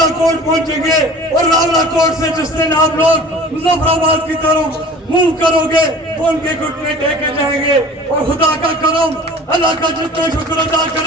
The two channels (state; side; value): normal; both; correlation 0.43